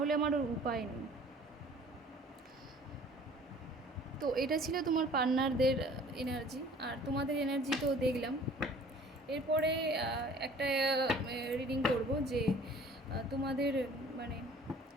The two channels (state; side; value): normal; both; correlation 0.50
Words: আমার ওর উপায় নেই। তো এটা ছিল তোমার পার্টনারদের এনার্জি, আর তোমাদের এনার্জি তো দেখলাম। এরপরে একটা রিডিং করব যে তোমাদের মানে